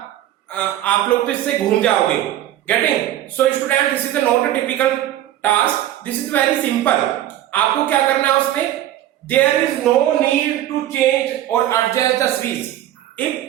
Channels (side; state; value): left; quieter; 12.8 dB